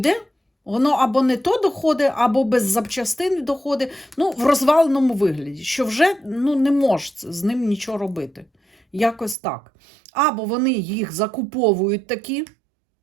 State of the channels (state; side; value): drops out; left; at 9.3 s